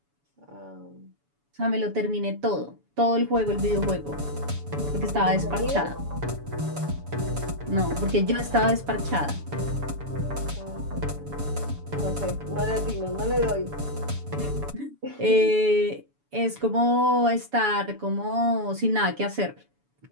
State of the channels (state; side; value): late; left; 7.0 ms